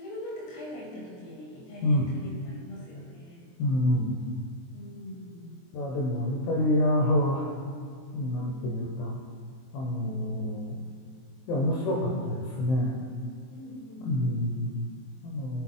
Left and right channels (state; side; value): late; right; 23 ms